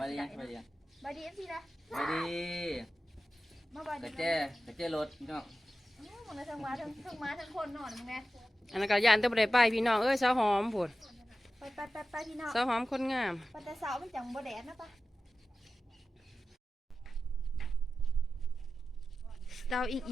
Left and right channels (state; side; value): normal; both; correlation 0.93